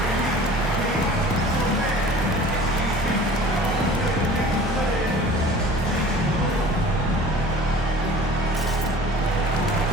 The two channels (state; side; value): normal; both; correlation 0.44